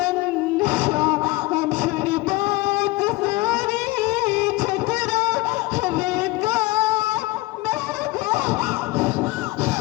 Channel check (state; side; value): quieter; right; 20.4 dB